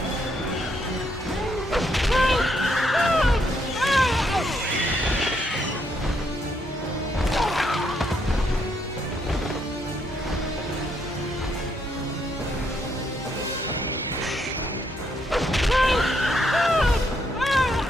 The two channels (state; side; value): normal; both; correlation 0.74